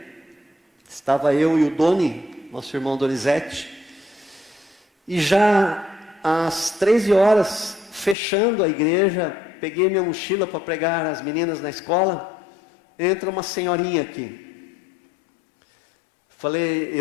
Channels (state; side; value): drops out; right; at 8.2 s